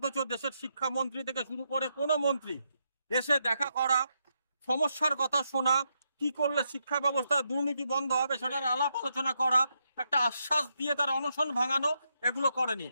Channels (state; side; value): inverted; both; correlation -0.81